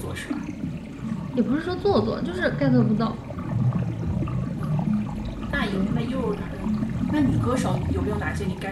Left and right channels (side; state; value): both; identical; correlation 1.00